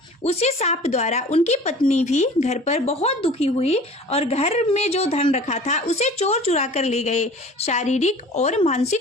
उसी साप द्वारा उनकी पत्नी भी घर पर बहुत दुखी हुई और घर में जो धन रखा था उसे चोर चुरा कर ले गए। शारीरिक और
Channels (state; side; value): normal; both; correlation 0.44